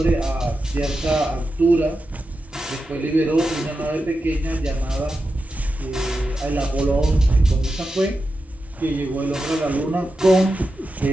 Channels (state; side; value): normal; both; correlation 0.90